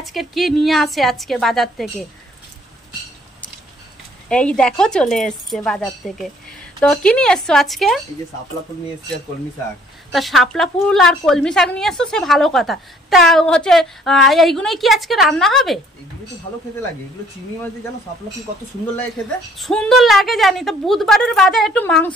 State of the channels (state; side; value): normal; both; correlation 0.60